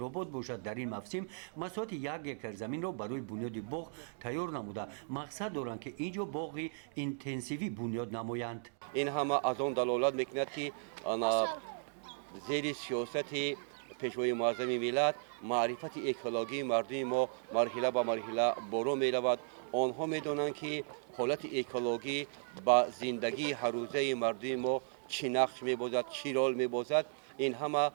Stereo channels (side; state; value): left; silent; digital silence